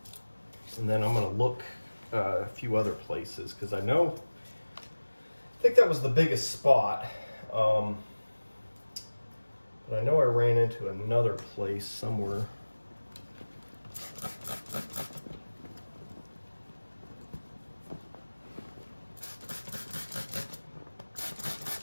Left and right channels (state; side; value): inverted; both; correlation -1.00